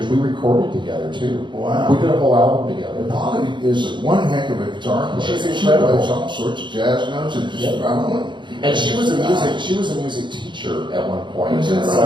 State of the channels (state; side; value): late; left; 0.23 ms